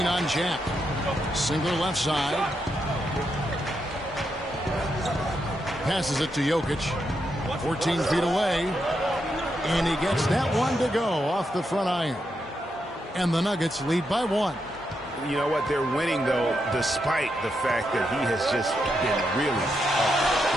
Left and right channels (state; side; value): normal; both; correlation 0.83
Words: on Jack. Singler left side. Passes it to Jokic. 14 feet away. And he gets that one to go off the front iron. And the Nuggets lead by 1. You know what? They're winning, though, despite the fact that he has just been really